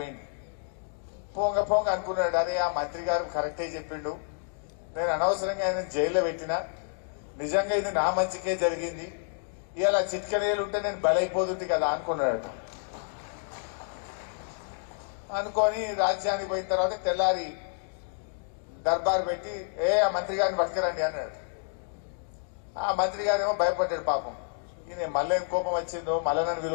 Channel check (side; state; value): right; silent; 58 dB below the other